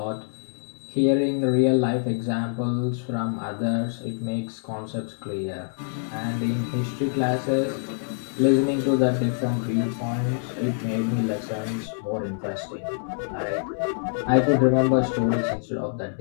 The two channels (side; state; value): right; silent; digital silence